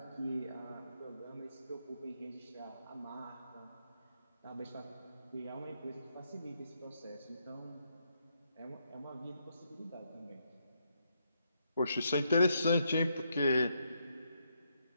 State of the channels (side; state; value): both; inverted; correlation -0.79